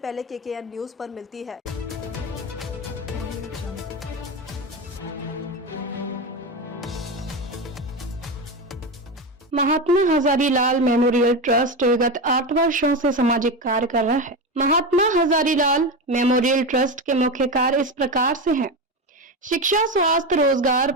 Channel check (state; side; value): normal; both; correlation 0.18